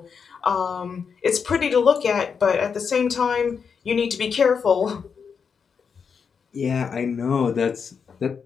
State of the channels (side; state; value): right; quieter; 6.2 dB